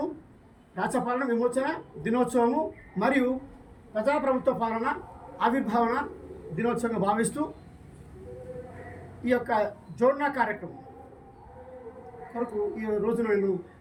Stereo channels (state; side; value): identical; both; correlation 1.00